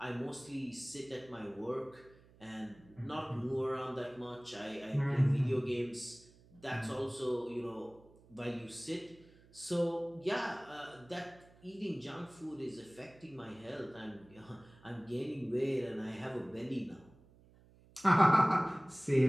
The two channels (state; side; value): noise; right; hum, 26 dB below the sound